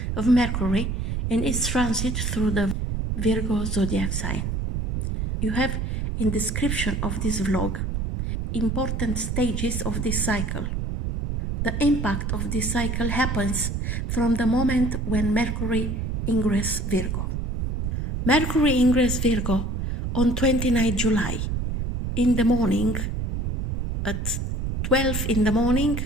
of Mercury in its transit through the Virgo zodiac sign. You have in description of this vlog important stages of this cycle. The impact of this cycle happens from the moment when Mercury ingress Virgo. Mercury ingress Virgo on 29 July in the morning at 12 in the morning,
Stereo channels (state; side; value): noise; right; rumble, 2 dB below the sound